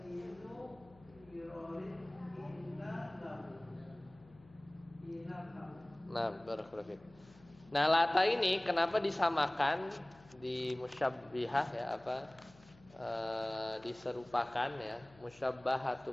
hinu yurod inna lahu. Nah, barakallahu fiik. Nah, lata ini kenapa disamakan di musyabbihah ya apa diserupakan ya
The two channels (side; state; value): left; noise; hum, 25 dB below the sound